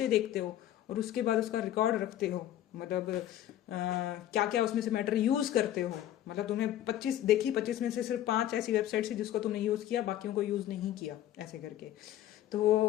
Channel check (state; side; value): quieter; right; 12.3 dB